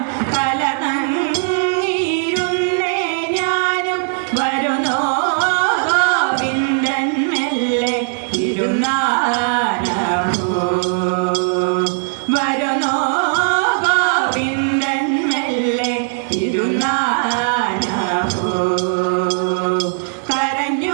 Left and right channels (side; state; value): left; silent; digital silence